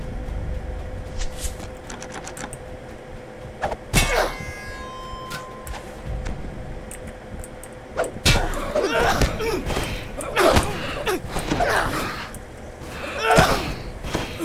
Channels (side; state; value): both; identical; correlation 1.00